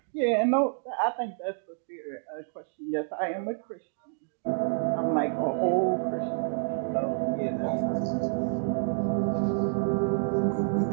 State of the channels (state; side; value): silent; left; digital silence